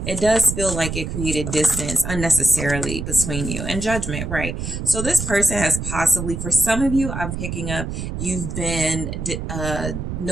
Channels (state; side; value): noise; right; rumble, 5 dB below the sound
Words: it does feel like it created distance unnecessarily between you and judgment, right? So this person has possibly, for some of you, I'm picking up, you've been